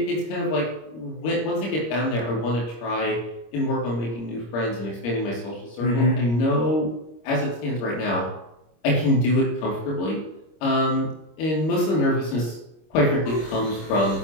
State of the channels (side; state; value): right; late; 25 ms